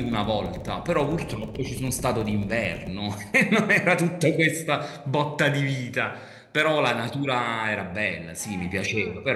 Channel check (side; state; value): both; identical; correlation 1.00